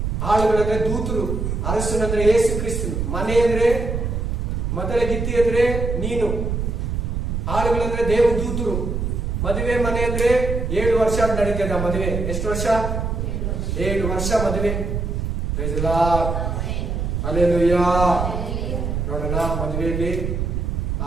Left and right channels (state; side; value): noise; right; rumble, 2 dB below the sound